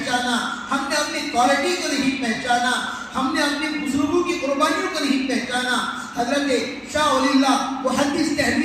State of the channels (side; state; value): both; identical; correlation 1.00